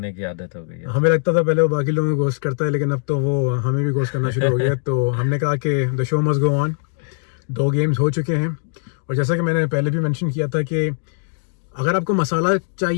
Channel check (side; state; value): right; silent; digital silence